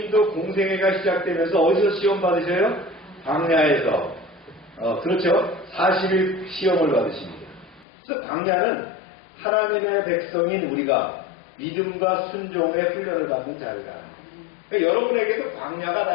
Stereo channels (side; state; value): right; drops out; at 7.9 s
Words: 공생애가 시작되면서 어디서 시험 받으셔요? 광야에서. 그렇죠. 40일 시험을 받으십니다. 그래서 광야는 하나님의 백성인 우리가 믿음과 순종의 훈련을 받는 자리다. 그러니까 여러분에게도 광야가 다